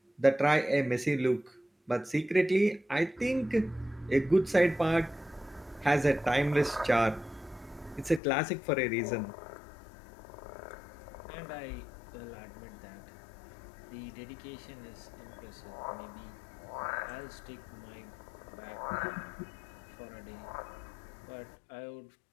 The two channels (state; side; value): drops out; right; at 8.2 s